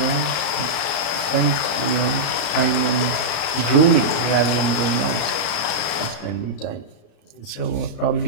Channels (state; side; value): late; right; 34 ms